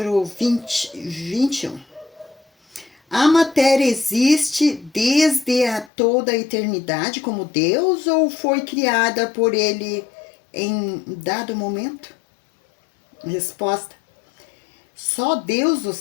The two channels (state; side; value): drops out; right; at 5.9 s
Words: 21. A matéria existe desde toda a eternidade como Deus ou foi criada por ele em dado momento? Resposta: só Deus o